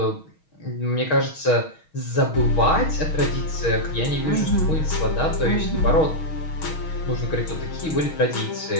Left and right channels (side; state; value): right; late; 6.3 ms